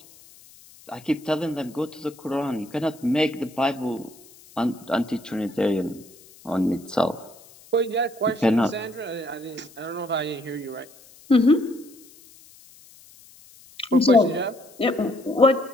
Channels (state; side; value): noise; left; hiss, 24 dB below the sound